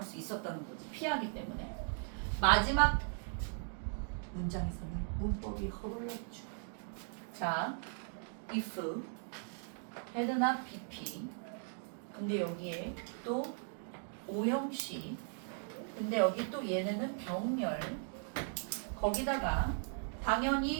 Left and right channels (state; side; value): silent; left; 52 dB below the other